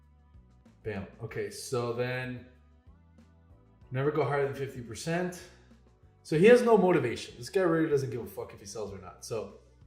Bam. Okay, so then never go higher than 50%. So he has no motivation. This guy really doesn't give a fuck if he sells or not. So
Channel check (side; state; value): both; identical; correlation 1.00